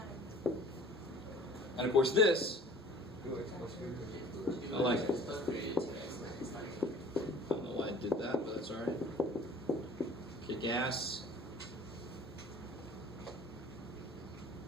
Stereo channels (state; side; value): normal; both; correlation 0.47